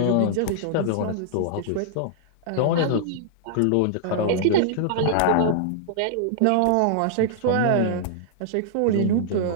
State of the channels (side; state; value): both; different; correlation -0.01